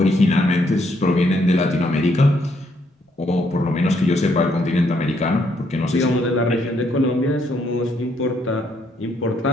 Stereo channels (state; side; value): normal; both; correlation 0.72